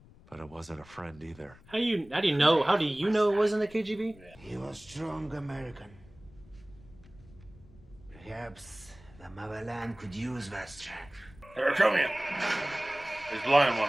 But it wasn't a friend either. How do you know? How do you know it wasn't the KGB? He was strong American. Perhaps the motherland could use that strength. They're coming. There's blood in one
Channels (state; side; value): noise; left; rumble, 23 dB below the sound